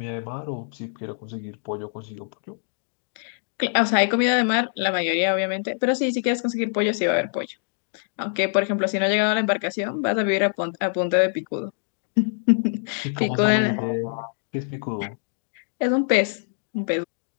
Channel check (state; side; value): silent; right; digital silence